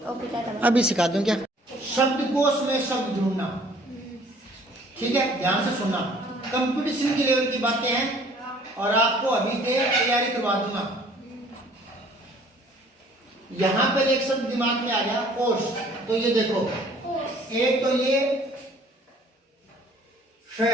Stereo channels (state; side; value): normal; both; correlation 0.55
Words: अभी सिखा दूं क्या? शब्दकोश में शब्द ढूंढना, ठीक है? ध्यान से सुनना, कंपटीशन के लेवल की बातें हैं और आपको अभी से तैयारी करवा दूंगा। यहां पर एक शब्द दिमाग में आ गया, कोश। तो ये देखो, एक तो ये